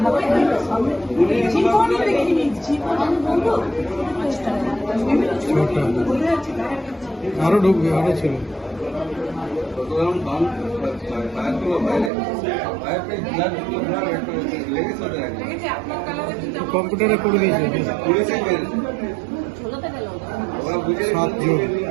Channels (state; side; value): drops out; left; at 12.1 s